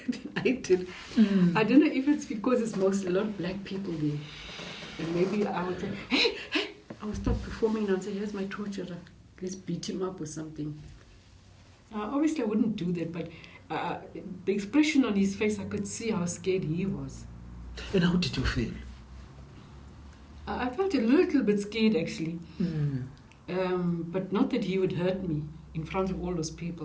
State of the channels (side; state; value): both; identical; correlation 1.00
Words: than I did. I don't know if it's because it's a lot of black people there. And maybe I would say, hey, I would stop performing and say, here's my torturer. Let's beat him up or something. Obviously I wouldn't do that, but the expression on his face, I could see how scared he was. And how did you feel? I felt a little bit scared actually. But not that he would hurt me in front of all those